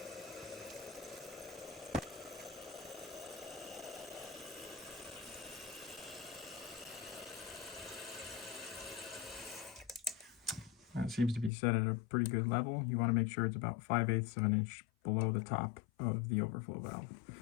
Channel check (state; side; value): drops out; right; at 11.5 s